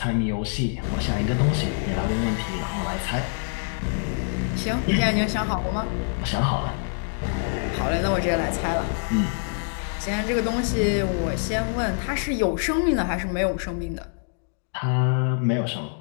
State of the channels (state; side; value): silent; right; 62 dB below the other